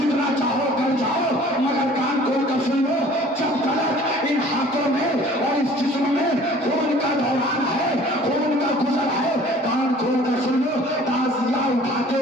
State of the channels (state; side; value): normal; both; correlation 0.50